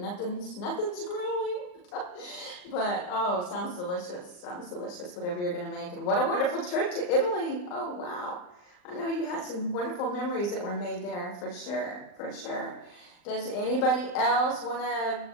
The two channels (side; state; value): right; late; 39 ms